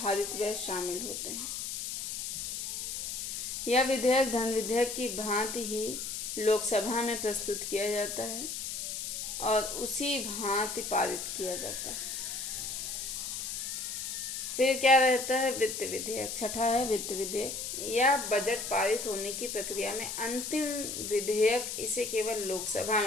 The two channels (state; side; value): noise; left; hiss, 4 dB below the sound